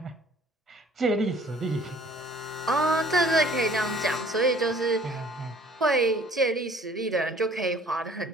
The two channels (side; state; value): both; normal; correlation 0.55